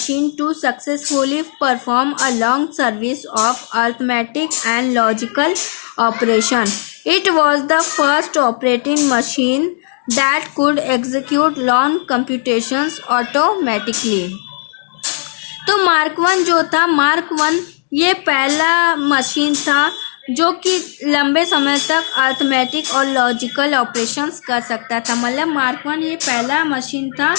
to successfully perform a long series of arithmetic and logical operation. It was the first operating machine that could execute long computations automatically. तो mark one ये पहला machine था जो कि लंबे समय तक arithmetic और लॉजिकल ऑपरेशंस कर सकता था। मतलब मार्क वन ये पहला मशीन था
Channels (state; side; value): silent; right; digital silence